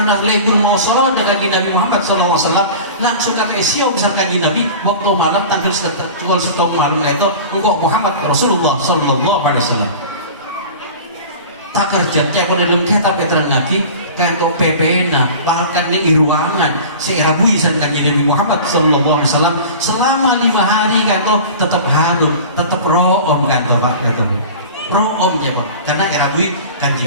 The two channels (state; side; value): inverted; both; correlation -0.37